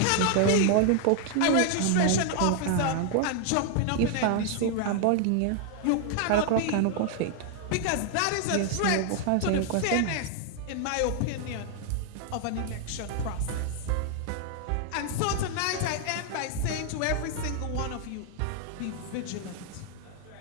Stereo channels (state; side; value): different; both; correlation 0.00